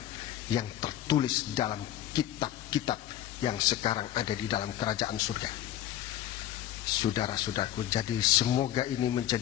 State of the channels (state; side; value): quieter; right; 12.5 dB